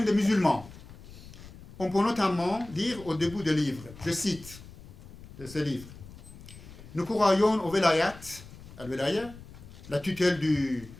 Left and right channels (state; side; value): noise; left; rumble, 17 dB below the sound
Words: des musulmans. On peut notamment lire au début du livre, je cite de ce livre: nous croyons au velayat, al-velaya, la tutelle du